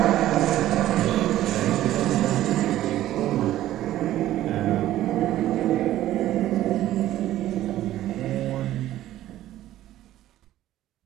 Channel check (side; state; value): left; quieter; 13.8 dB